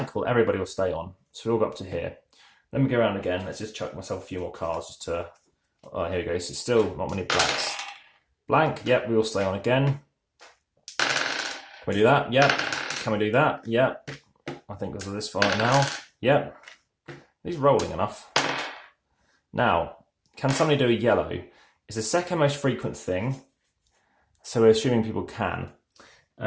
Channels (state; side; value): identical; both; correlation 1.00